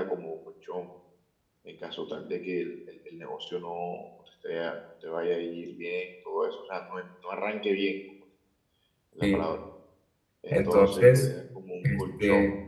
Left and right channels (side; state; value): both; identical; correlation 1.00